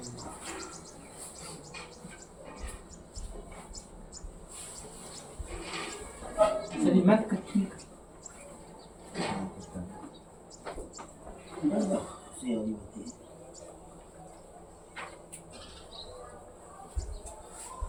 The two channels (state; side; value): identical; both; correlation 1.00